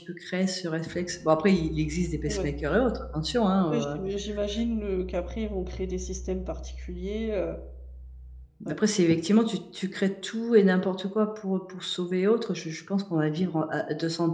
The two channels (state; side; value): identical; both; correlation 1.00